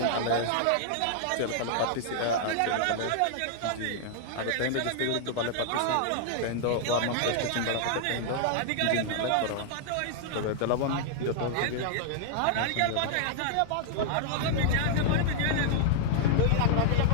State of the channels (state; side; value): different; both; correlation -0.01